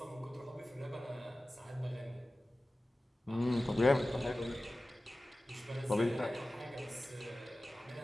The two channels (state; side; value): normal; both; correlation 0.96